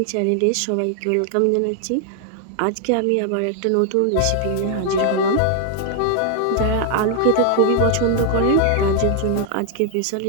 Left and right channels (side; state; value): both; different; correlation 0.00